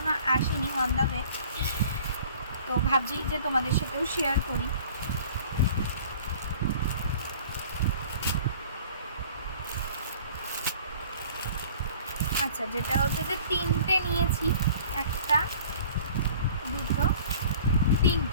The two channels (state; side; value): inverted; both; correlation -0.49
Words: আসেনি অন দ্য ওয়ে। তো তো ভাবছি যে তোমাদের সাথেও শেয়ার করি। আচ্ছা, যেটা হচ্ছে যে 3টে নিয়েছি, 1 2